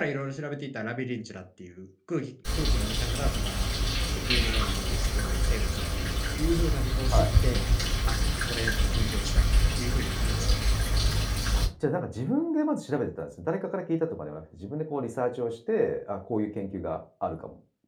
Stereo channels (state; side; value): identical; both; correlation 1.00